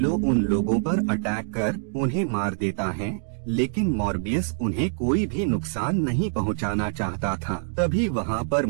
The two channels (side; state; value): left; silent; digital silence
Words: उन लोगों पर अटैक कर उन्हें मार देता है, लेकिन मॉर्बियस उन्हें कोई भी नुकसान नहीं पहुंचाना चाहता था। तभी वहाँ पर